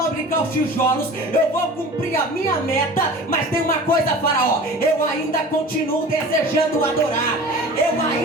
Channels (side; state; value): both; normal; correlation 0.40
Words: os tijolos, eu vou cumprir a minha meta. Mas tem uma coisa, Faraó: eu ainda continuo desejando adorar, eu